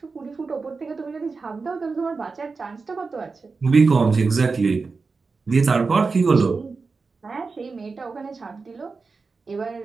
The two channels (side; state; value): left; quieter; 4.4 dB